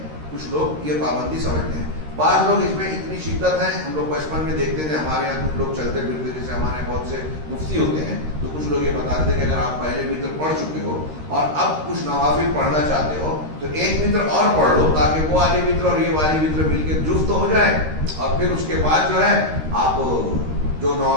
کچھ لوگ یہ پابندی سمجھتے ہیں. بعض لوگ اس میں اتنی شدت ہے، ہم لوگ بچپن میں دیکھتے تھے ہمارے یہاں کچھ لوگ چلتے پھرتے، جیسے ہمارے بہت سے مفتی ہوتے ہیں، تو کچھ لوگ یہ بتاتے تھے کہ اگر آپ پہلے وتر پڑھ چکے ہو اور اب کچھ نوافل پڑھنا چاہتے ہو تو ایک وتر اور پڑھ لو تاکہ وہ والی وتر اور یہ والی وتر مل کے جفت ہو جائے، اور پھر اس کے بعد جو ہے آپ جو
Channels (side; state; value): left; late; 13 ms